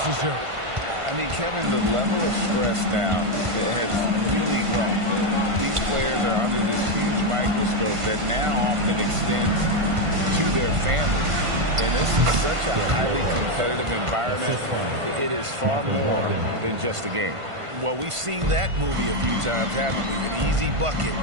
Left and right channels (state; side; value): late; left; 1.5 ms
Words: I mean, Kevin, the level of stress now has really grown. These players are under this huge microscope that now often extends to their families. And this is such a highly competitive environment. It is far more than just a game. Well, we've seen that movie a few times, haven't we? An easy bucket